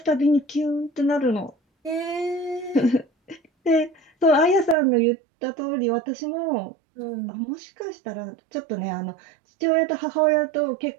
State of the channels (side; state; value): left; drops out; at 4.8 s